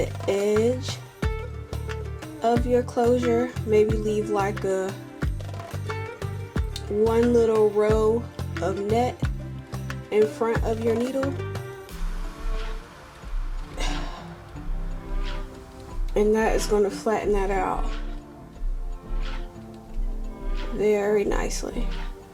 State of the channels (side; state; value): both; identical; correlation 1.00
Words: edge of your closure. Maybe leave like one little row of net in front of your needle, and that is going to flatten that out very nicely.